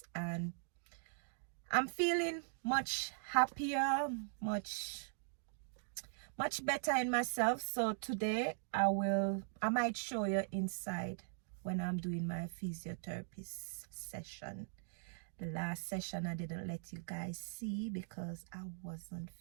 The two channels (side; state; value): left; silent; digital silence